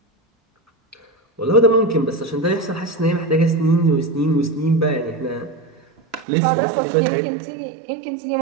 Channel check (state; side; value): drops out; left; at 6.2 s